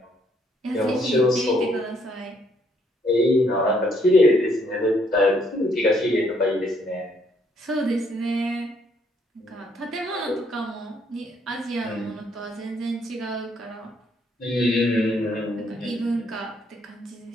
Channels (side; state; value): both; normal; correlation 0.69